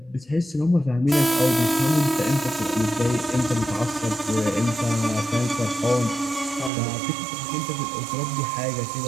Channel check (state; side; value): drops out; left; at 6.7 s